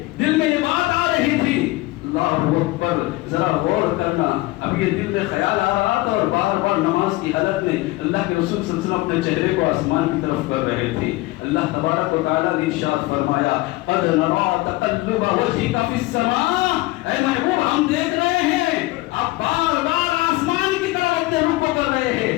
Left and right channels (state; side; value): quieter; right; 19.9 dB